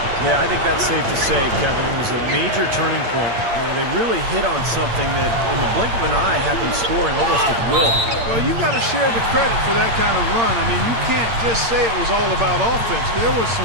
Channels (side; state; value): left; late; 8.7 ms